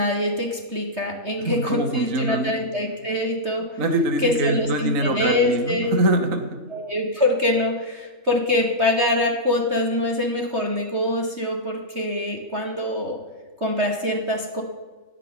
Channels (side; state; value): left; late; 3.2 ms